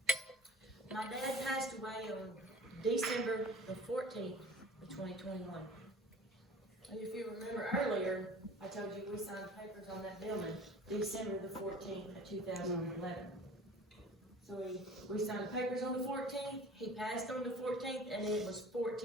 My dad passed away on December the 14th of 2021. If you remember earlier, I told you we signed papers on that building December the 14th of 2011. So we signed papers on the 14th, he passed on the 14th, and it was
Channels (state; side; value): normal; both; correlation 0.44